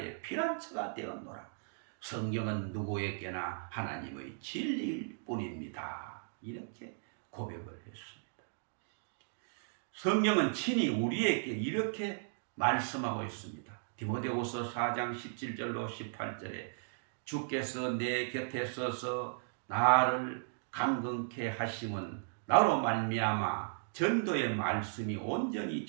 피난처가 되었노라. 성경은 누구에게나 하나님의 진리일 뿐입니다. 이렇게 고백을 했습니다. 성경은 친히 우리에게 이렇게 말씀하고 있습니다. 디모데후서 4장 17절로 18절에 주께서 내 곁에 서서 나를 강건케 하심은 나로 말미암아 전도의 말씀이 온전히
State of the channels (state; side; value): silent; left; digital silence